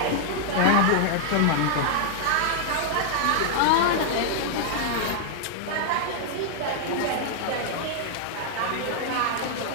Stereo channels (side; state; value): both; different; correlation -0.01